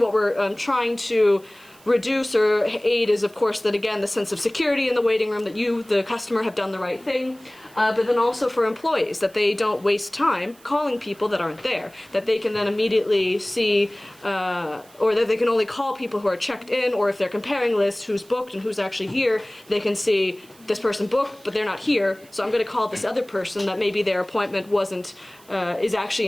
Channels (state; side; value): noise; right; hiss, 26 dB below the sound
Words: we're trying to reduce or aid is, of course, that again, the sense of security in the waiting room, that you, the customer, have done the right thing, but then also for employees, that they don't waste time calling people that aren't there, that they can then immediately see, or that they can only call people who are checked in, or if they're comparing lists, who's booked and who's actually here, they can see this person booked, but they're not here, so I'm going to call this other person that maybe their appointment wasn't, is